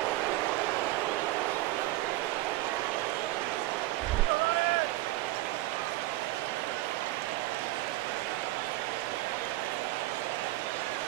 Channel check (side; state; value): left; quieter; 17.6 dB